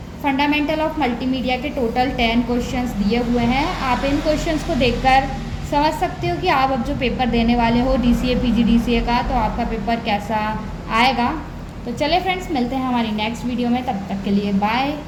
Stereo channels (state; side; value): identical; both; correlation 1.00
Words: फंडामेंटल ऑफ मल्टीमीडिया के टोटल 10 क्वेश्चंस दिए हुए हैं। आप इन क्वेश्चंस को देखकर समझ सकते हो कि आप अब जो पेपर देने वाले हो DCA PGDCA का, तो आपका पेपर कैसा आएगा। तो चले फ्रेंड्स, मिलते हैं हमारी नेक्स्ट वीडियो में, तब तक के लिए बाय।